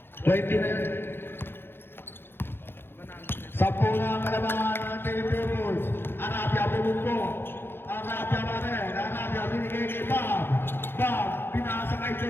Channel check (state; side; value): late; right; 0.10 ms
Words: 20 na yun. 10 na ang kalabangan ng Team Pupils. Arabia bumungko. Arabia pa rin. Arabia binigay kay Bob. Bob, pinasa kay